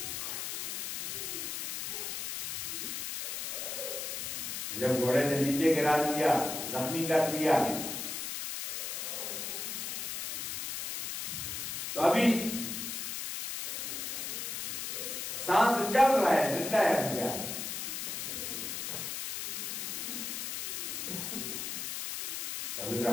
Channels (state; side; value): noise; left; hiss, 4 dB below the sound